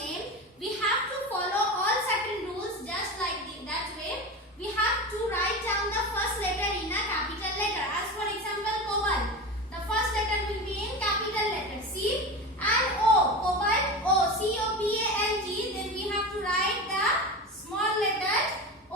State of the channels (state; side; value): normal; both; correlation 0.26